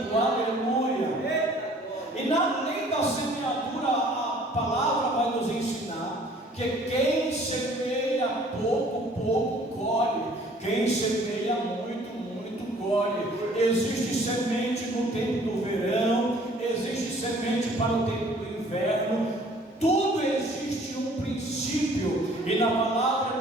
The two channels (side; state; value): both; normal; correlation 0.55